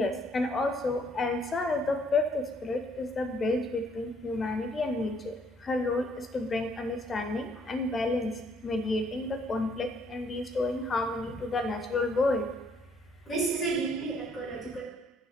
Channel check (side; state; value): both; normal; correlation 0.66